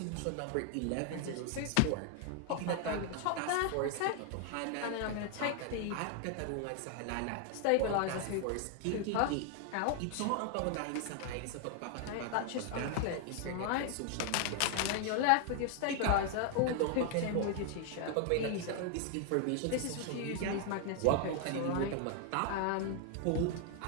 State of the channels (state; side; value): different; both; correlation 0.00